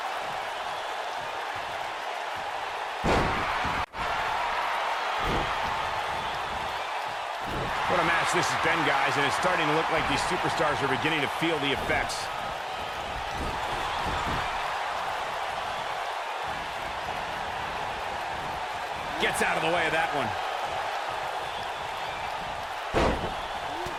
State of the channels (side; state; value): both; identical; correlation 1.00